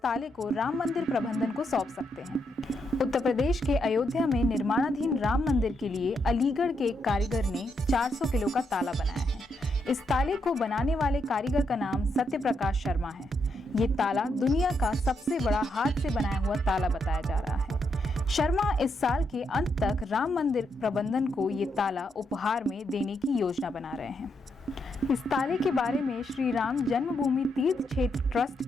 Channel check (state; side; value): normal; both; correlation 0.80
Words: को राम मंदिर प्रबंधन को सौंप सकते हैं। उत्तर प्रदेश के अयोध्या में निर्माणाधीन राम मंदिर के लिए अलीगढ़ के एक कारीगर ने 400 किलो का ताला बनाया है। इस ताले को बनाने वाले कारीगर का नाम सत्य प्रकाश शर्मा है। ये ताला दुनिया का सबसे बड़ा हाथ से बनाया हुआ ताला बताया जा रहा है। शर्मा इस साल के अंत तक राम मंदिर प्रबंधन को ये ताला उपहार में देने की योजना बना रहे हैं। इस ताले के बारे में श्री राम जन्मभूमि तीर्थ क्षेत्र ट्रस्ट